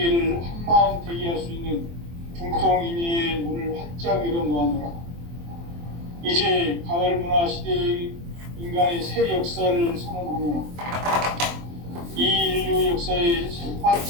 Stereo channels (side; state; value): left; late; 23 ms